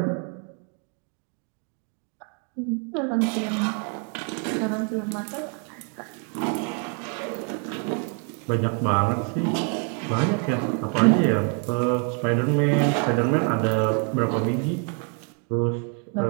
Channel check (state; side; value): quieter; left; 38.0 dB